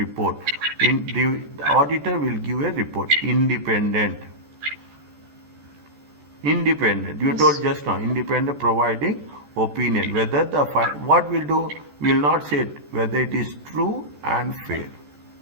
The auditor will give a report, independent. Independent. You told just now, independent providing opinion. Whether the what we'll do, we will not say it, whether it is true and fair.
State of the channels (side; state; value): left; late; 14 ms